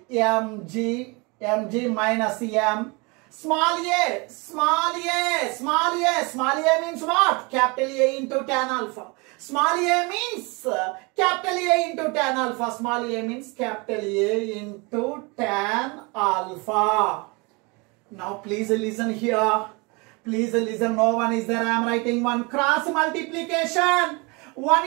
mg minus m. Small a means what? Capital A into tan alpha. Small a means capital A into tan alpha. Small a means capital A into tan alpha. Now please listen here. Please listen. No one is there. I am writing one. Cross multiplication. 1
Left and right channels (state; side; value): quieter; left; 28.5 dB